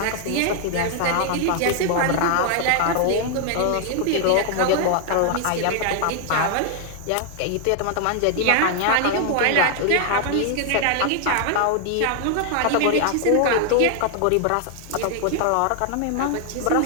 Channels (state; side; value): different; both; correlation 0.00